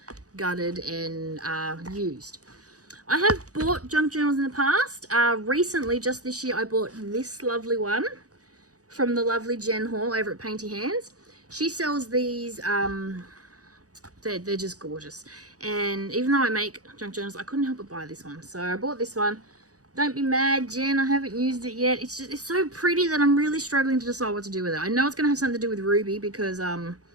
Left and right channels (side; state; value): left; late; 0.67 ms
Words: gutted and used. I have bought junk journals in the past. Recently, just this year, I bought this lovely one from the lovely Jen Hall over at Painty Hands. She sells these... They're just gorgeous. And even though I make junk journals, I couldn't help but buy this one. So I bought this one. Don't be mad, Jen, I haven't used it yet. It's so pretty that I'm really struggling to decide what to do with it. I know it's going to have something to do with Ruby because